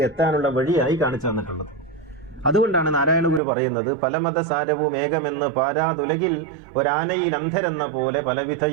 എത്താനുള്ള വഴിയായി കാണിച്ചു തന്നിട്ടുള്ളത്. അതുകൊണ്ടാണ് നാരായണ ഗുരു പറയുന്നത്, പലമത സാരവും ഏകമെന്ന് പാരാതുലകിൽ ഒരാനയിൽ അന്ധരെന്ന പോലെ പലവിധ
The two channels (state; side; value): drops out; left; at 3.4 s